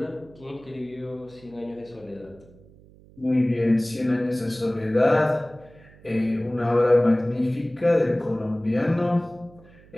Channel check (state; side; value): noise; right; hum, 25 dB below the sound